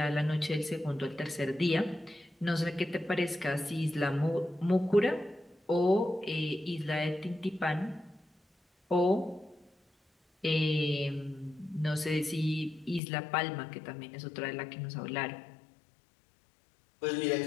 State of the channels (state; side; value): drops out; right; at 13.0 s